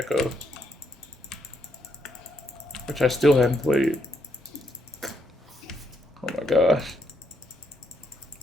which I still haven't played. Oh my gosh.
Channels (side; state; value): both; normal; correlation 0.76